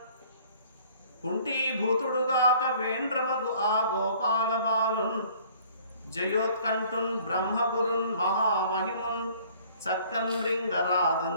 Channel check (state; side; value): inverted; both; correlation -0.55